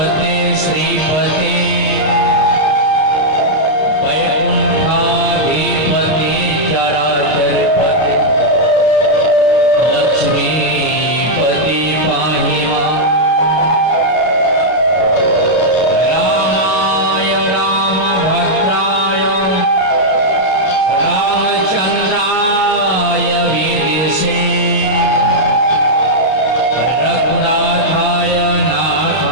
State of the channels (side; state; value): right; late; 32 ms